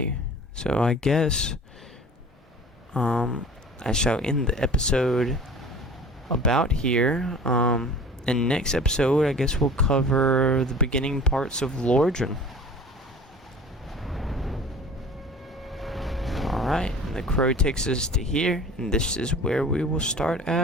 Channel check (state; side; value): normal; both; correlation 0.42